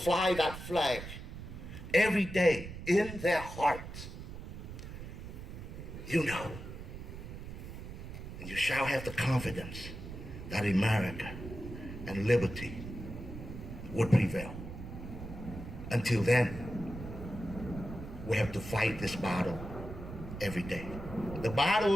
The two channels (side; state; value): right; noise; rumble, 10 dB below the sound